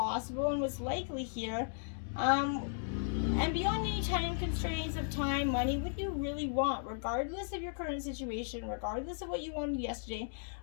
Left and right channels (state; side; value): silent; right; digital silence